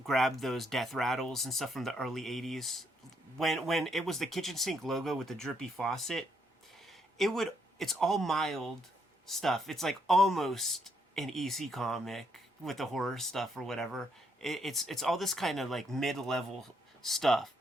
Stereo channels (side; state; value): both; normal; correlation 0.74